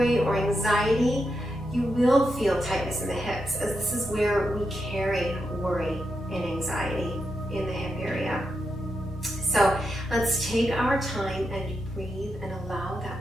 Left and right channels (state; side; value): normal; both; correlation 0.85